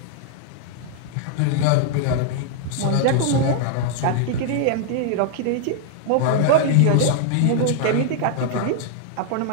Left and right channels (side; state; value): both; different; correlation 0.00